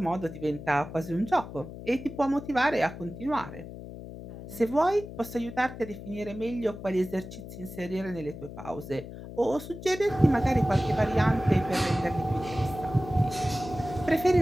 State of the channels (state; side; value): noise; left; hum, 12 dB below the sound